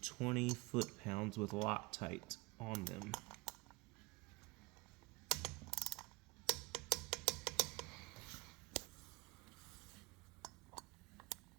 20 foot-pounds with Loctite on them.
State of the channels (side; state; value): left; quieter; 24.3 dB